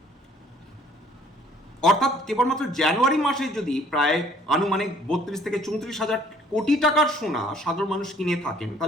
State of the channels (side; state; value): both; normal; correlation 0.59